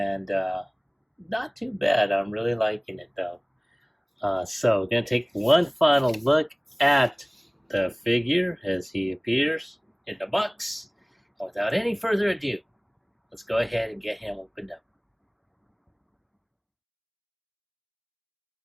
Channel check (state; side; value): identical; both; correlation 1.00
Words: not too bad. I'm really liking it though. So we're going to take one final look at the figure as he appears in the box. And without any further ado, let's go ahead and get him opened up.